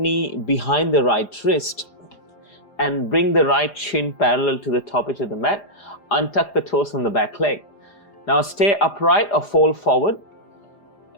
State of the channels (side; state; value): right; late; 4.9 ms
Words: behind the right wrist and bring the right shin parallel to the top edge of the mat. Untuck the toes on the back leg. Now stay upright or fold forward.